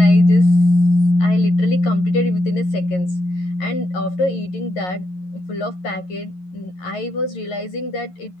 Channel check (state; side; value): late; right; 11 ms